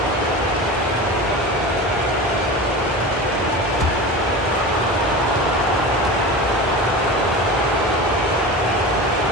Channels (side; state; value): both; normal; correlation 0.30